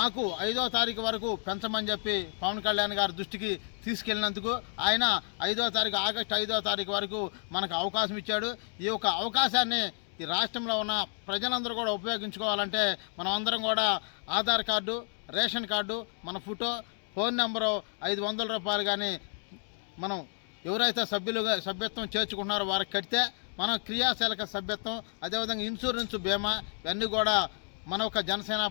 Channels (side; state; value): right; silent; 55 dB below the other